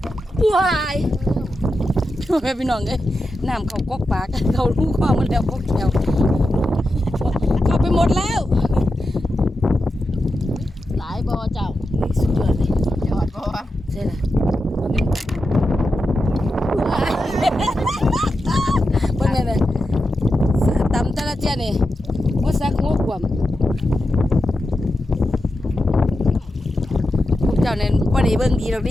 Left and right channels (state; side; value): normal; both; correlation 0.89